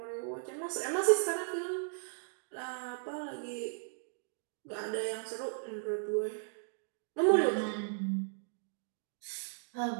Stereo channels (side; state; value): left; silent; digital silence